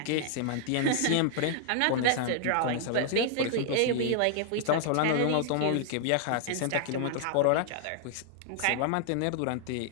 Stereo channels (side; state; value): both; different; correlation -0.01